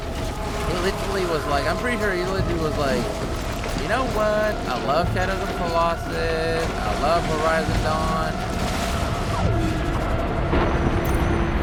He literally was like, I'm pretty sure he literally was like, you know what? I love Shadows of the Colossus. I love Horizon Dawn.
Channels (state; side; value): identical; both; correlation 1.00